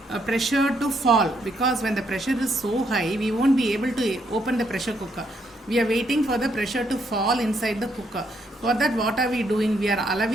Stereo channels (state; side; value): normal; both; correlation 0.74